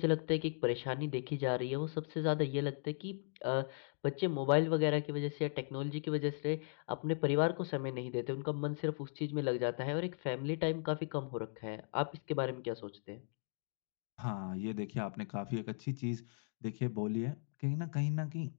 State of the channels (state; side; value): silent; right; digital silence